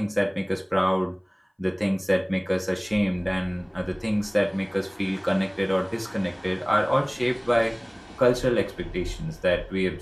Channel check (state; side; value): identical; both; correlation 1.00